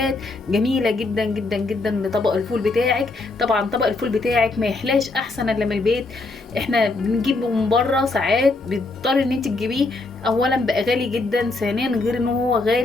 جميلة جدا جدا جدا لطبق الفول بتاعك. طبعا طبق الفول بتاعك ما يحلاش احسن الا من البيت. احنا بنجيبه من بره ساعات بيضطر ان انت تجيبيه، اولا بقى غالي جدا، ثانيا غير ان هو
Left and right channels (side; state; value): right; quieter; 3.3 dB